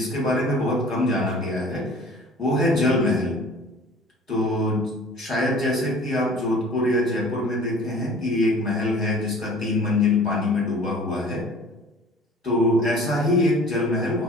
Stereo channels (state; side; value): normal; both; correlation 0.47